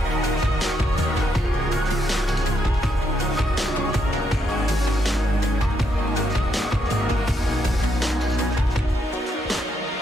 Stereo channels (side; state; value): both; normal; correlation 0.78